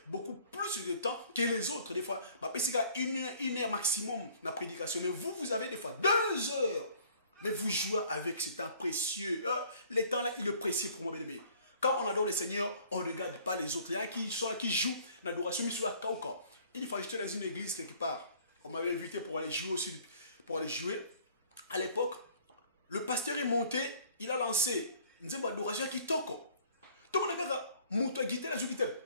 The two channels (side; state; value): both; inverted; correlation -0.56